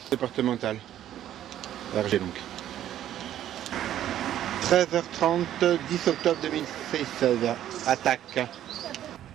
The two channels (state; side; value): quieter; left; 11.7 dB